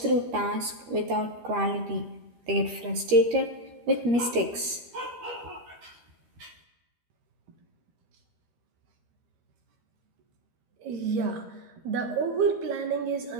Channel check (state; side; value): late; left; 13 ms